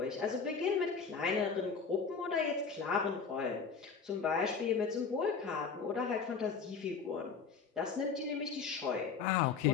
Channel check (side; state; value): right; quieter; 5.6 dB